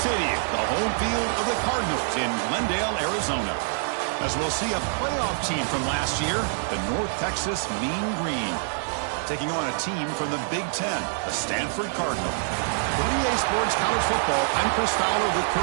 City, the home field of the Cardinals in Glendale, Arizona. As we'll see a playoff team from last year, the North Texas Mean Green, taking on a team from the Big Ten, the Stanford Cardinal. For EA Sports College Football, I'm Chris Fowler with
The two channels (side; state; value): left; silent; digital silence